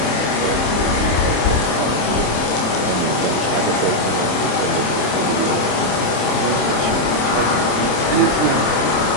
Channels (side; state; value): right; late; 27 ms